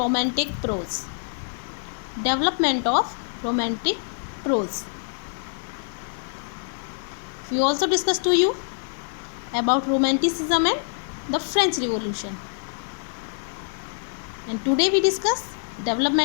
prose. Development of romantic prose. We also discussed to you about romanticism and the French Revolution. And today we discuss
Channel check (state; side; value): silent; right; 56 dB below the other